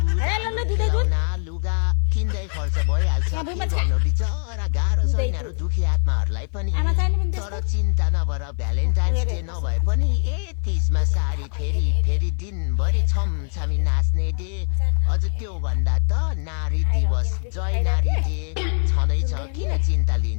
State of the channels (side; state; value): right; silent; 57 dB below the other